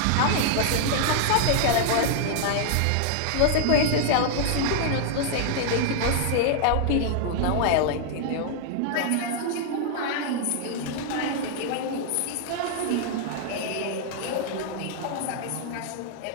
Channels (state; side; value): different; both; correlation -0.01